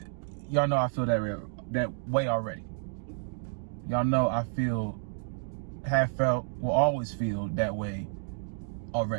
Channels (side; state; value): left; silent; digital silence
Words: Y'all know I feel that way already. Y'all know I have felt, will always feel that way